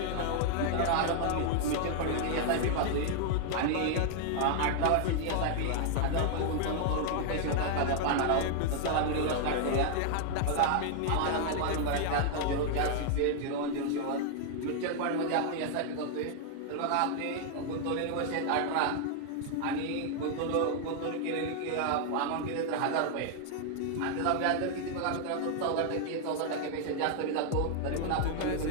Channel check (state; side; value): different; both; correlation 0.00